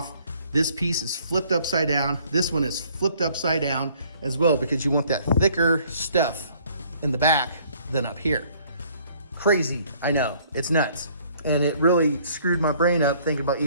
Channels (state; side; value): inverted; both; correlation -0.60